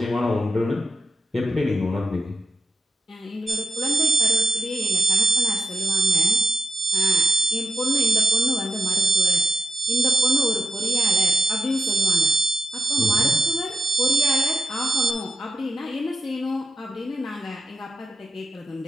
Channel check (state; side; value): normal; both; correlation 0.82